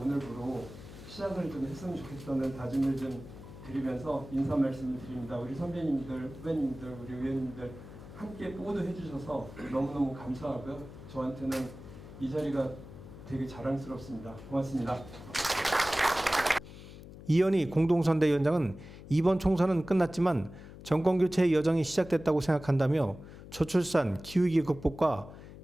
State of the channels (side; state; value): left; noise; hum, 15 dB below the sound